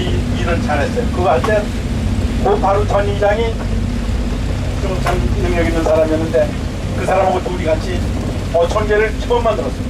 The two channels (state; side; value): identical; both; correlation 1.00